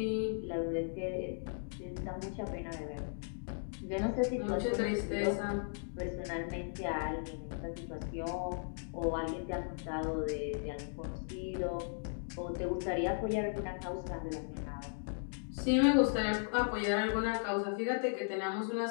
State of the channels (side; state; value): right; silent; digital silence